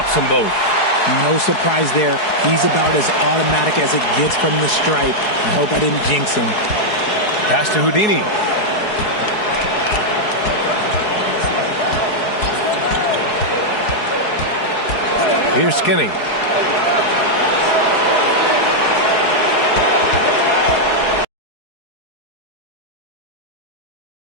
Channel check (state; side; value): late; right; 4.7 ms